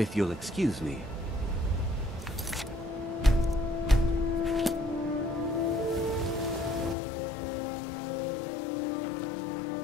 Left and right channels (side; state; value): right; drops out; at 7.0 s